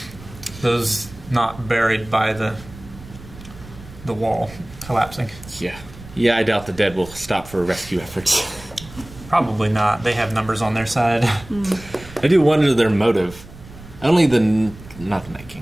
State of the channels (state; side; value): noise; right; rumble, 18 dB below the sound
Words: Those not buried by the wall collapsing. Yeah. Yeah, I doubt the Dead will stop for rescue efforts. Probably not. They have numbers on their side. I do wonder their motive. Only not the Night